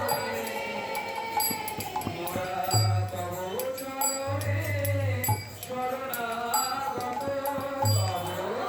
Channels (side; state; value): both; identical; correlation 1.00